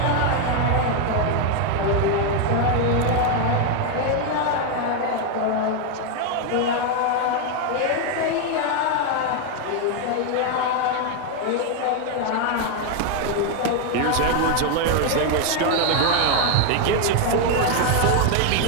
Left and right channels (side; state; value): both; different; correlation 0.01